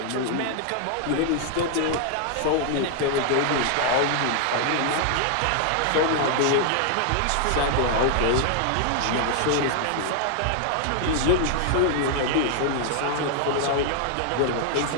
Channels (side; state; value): both; different; correlation 0.00